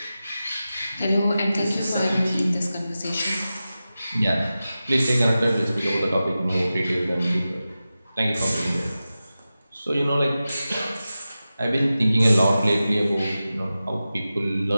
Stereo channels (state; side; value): inverted; both; correlation -0.94